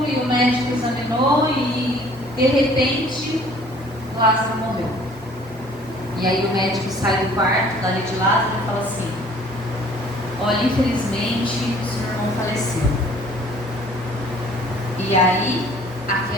e o médico examinou e de repente Lázaro morreu. E aí o médico sai do quarto dali de Lázaro e fala assim: olha, infelizmente o seu irmão faleceu. E aí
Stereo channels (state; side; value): normal; both; correlation 0.54